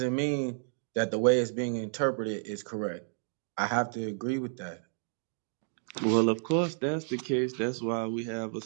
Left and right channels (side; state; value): left; silent; digital silence